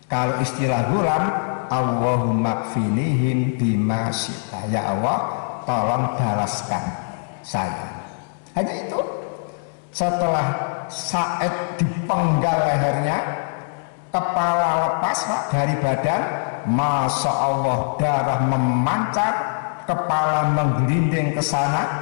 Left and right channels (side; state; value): right; silent; digital silence